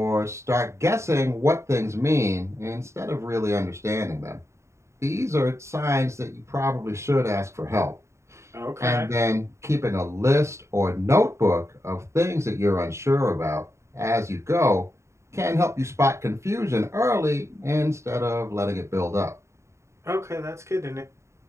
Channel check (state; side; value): late; left; 0.14 ms